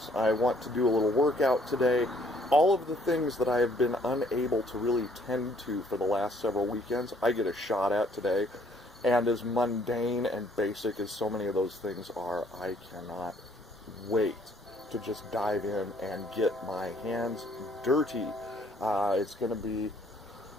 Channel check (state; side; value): normal; both; correlation 0.63